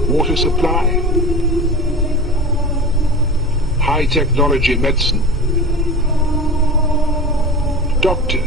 water supply, high-technology medicine,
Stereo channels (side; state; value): both; normal; correlation 0.32